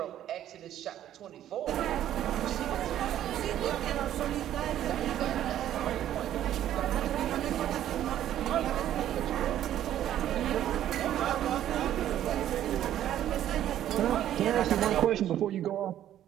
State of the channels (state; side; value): quieter; left; 11.7 dB